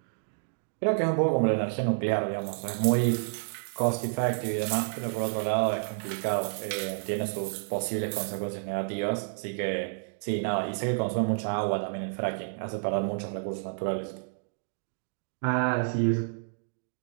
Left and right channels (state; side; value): silent; left; digital silence